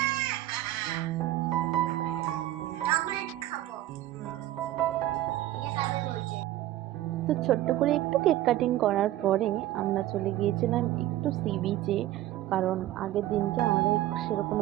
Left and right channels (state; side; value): quieter; left; 14.5 dB